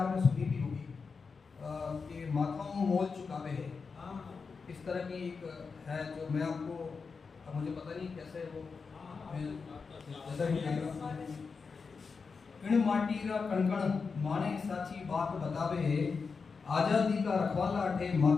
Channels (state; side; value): quieter; right; 5.0 dB